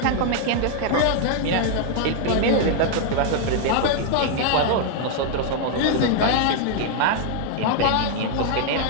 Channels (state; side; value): different; both; correlation 0.00